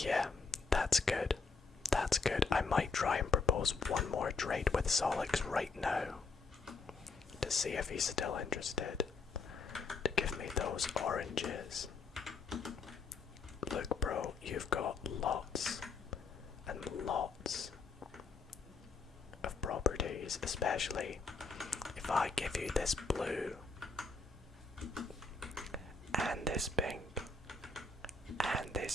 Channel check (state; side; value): quieter; right; 4.2 dB